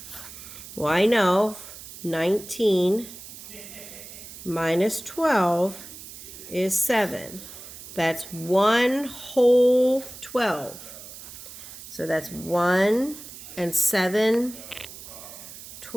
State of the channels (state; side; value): noise; right; hiss, 14 dB below the sound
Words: Well, I know 19 minus 12 is 7. That's 1 whole 12. So that's 1 and